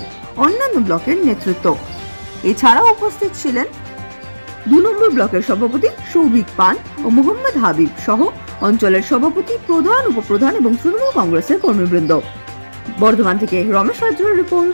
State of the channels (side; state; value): both; inverted; correlation -1.00